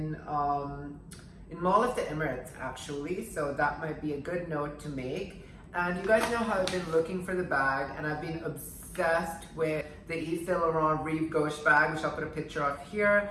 Mall of the Emirates, actually, so that might be a good note to make. And you guys know how I've been looking for the bag, and I've been obsessed with the Yves Saint Laurent Rive Gauche bag, which I'll put a picture of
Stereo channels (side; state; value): both; identical; correlation 1.00